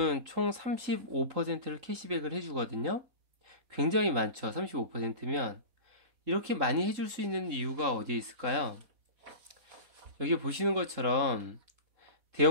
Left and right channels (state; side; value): late; left; 3.7 ms